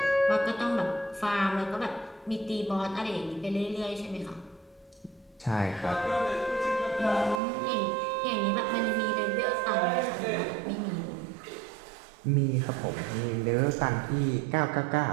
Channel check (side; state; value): left; drops out; at 7.4 s